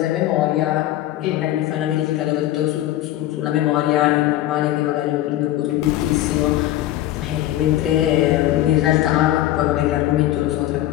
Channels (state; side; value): quieter; right; 14.1 dB